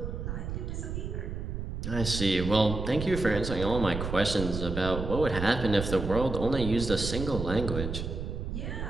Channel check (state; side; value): noise; right; rumble, 5 dB below the sound